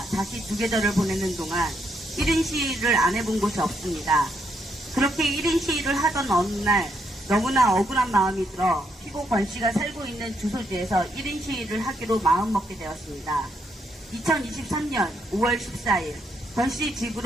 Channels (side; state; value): both; normal; correlation 0.76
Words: 다시 두 계절을 보내는 동안 1인 시위를 안 해본 곳이 없습니다. 그렇게 1인 시위를 하던 어느 날 너무나 억울한 마음이 들어 피고 권 씨가 살고 있는 주소지에서 1인 시위를 하기로 마음먹게 되었습니다. 2023년 5월 14일 권 씨